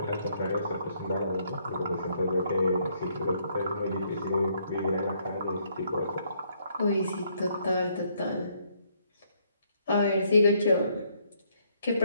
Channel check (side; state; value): both; inverted; correlation -0.70